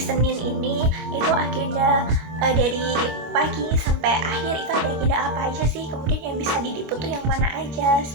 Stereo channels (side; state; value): left; late; 26 ms